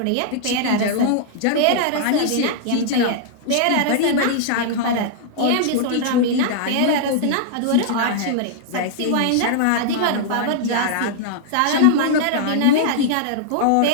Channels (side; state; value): both; different; correlation -0.01